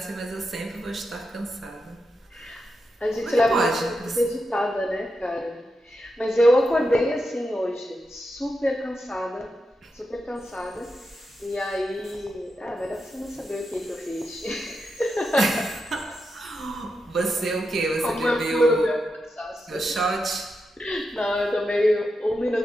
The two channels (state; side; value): normal; both; correlation 0.87